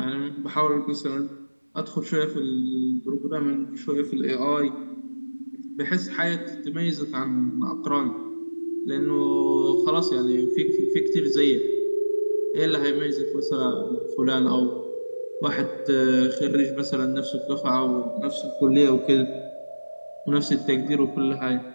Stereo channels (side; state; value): both; inverted; correlation -1.00